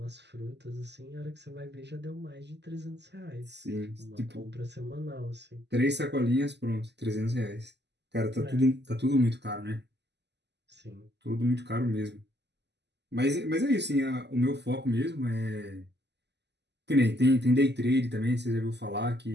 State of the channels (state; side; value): late; left; 0.50 ms